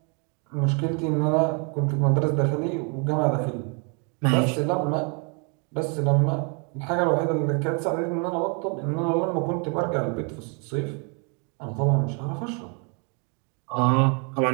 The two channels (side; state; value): left; quieter; 36.5 dB